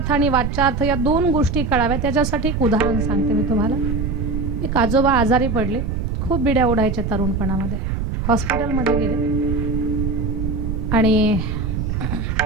आणि वाचार्थ या दोन गोष्टी कळाव्या त्याच्यासाठी एक उदाहरण सांगते मी तुम्हाला. एक आजोबा आजारी पडले, खूप बिड्या ओढायच्या तरुणपणामध्ये, हॉस्पिटलमध्ये गेले आणि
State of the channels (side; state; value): right; noise; rumble, 2 dB below the sound